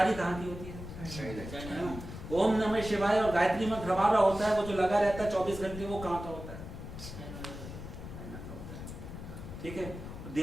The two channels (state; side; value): noise; left; rumble, 10 dB below the sound